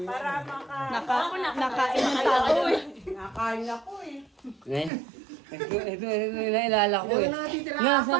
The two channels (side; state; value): left; drops out; at 4.9 s